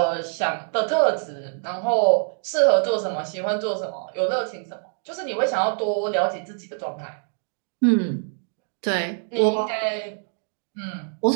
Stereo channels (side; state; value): left; silent; 58 dB below the other